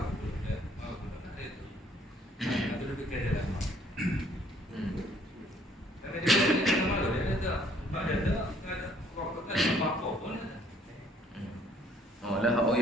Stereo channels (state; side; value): normal; both; correlation 0.62